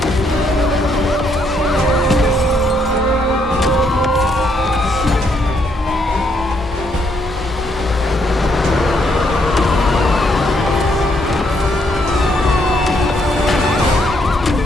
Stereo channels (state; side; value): normal; both; correlation 0.73